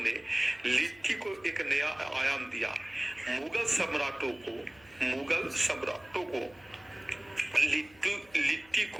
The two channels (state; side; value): noise; left; hum, 27 dB below the sound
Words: लिट्टी को एक नया आयाम दिया। मुगल सम्राटों को लिट्टी